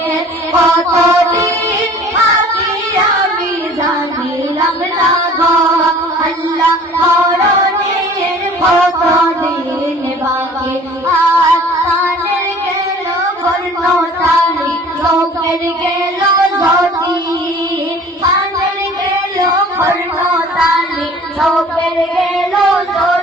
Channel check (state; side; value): normal; both; correlation 0.48